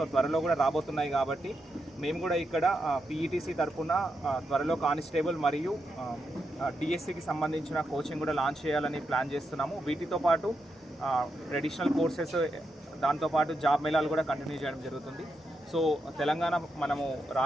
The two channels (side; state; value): both; normal; correlation 0.84